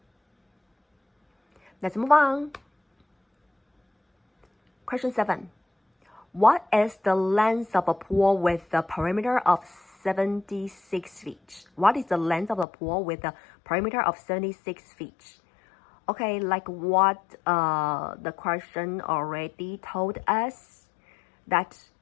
Let's move on. Question 7. What is the length of a pool with a perimeter of 76 feet? What is the length of a pool with a perimeter of 76 feet? Okay, like what the question already told us, that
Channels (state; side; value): drops out; right; at 12.7 s